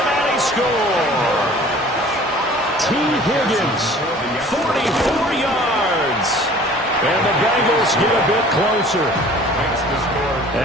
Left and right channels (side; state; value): both; normal; correlation 0.48